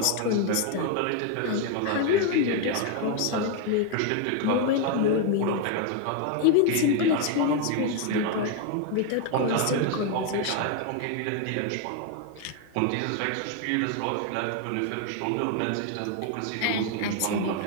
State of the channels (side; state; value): both; different; correlation 0.01